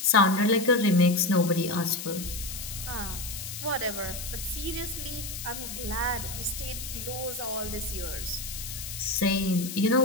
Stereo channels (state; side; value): noise; left; hiss, 8 dB below the sound